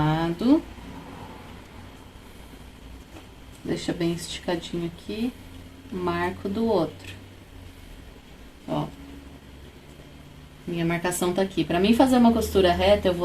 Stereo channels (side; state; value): both; identical; correlation 1.00